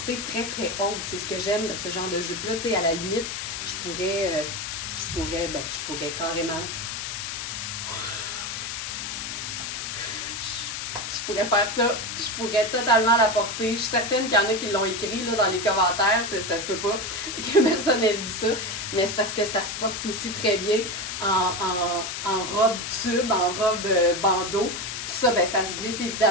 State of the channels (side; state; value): left; noise; hiss, 5 dB below the sound